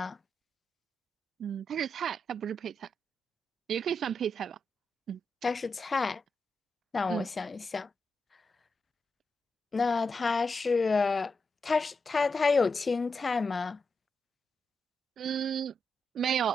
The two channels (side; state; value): both; normal; correlation 0.86